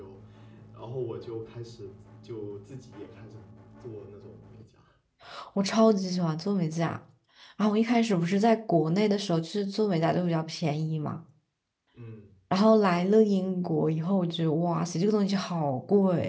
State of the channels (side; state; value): both; identical; correlation 1.00